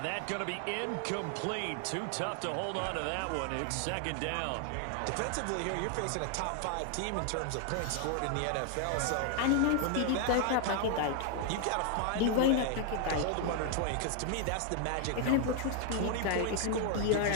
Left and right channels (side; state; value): both; different; correlation 0.00